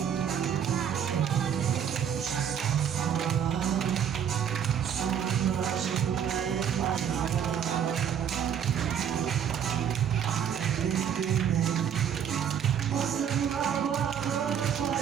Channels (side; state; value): left; quieter; 8.5 dB